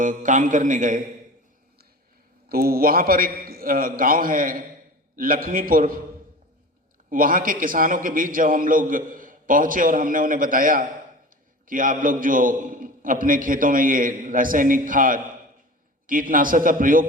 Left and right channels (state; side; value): normal; both; correlation 0.35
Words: काम करने गए, तो वहाँ पर एक गांव है लक्ष्मीपुर। वहाँ के किसानों के बीच जब हम लोग पहुँचे और हमने उन्हें बताया कि आप लोग जो अपने खेतों में ये रासायनिक खाद, कीटनाशक का प्रयोग